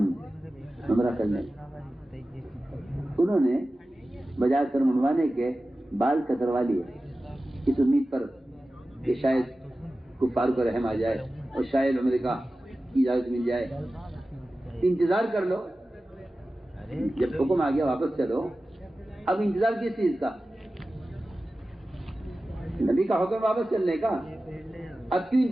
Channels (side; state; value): both; normal; correlation 0.95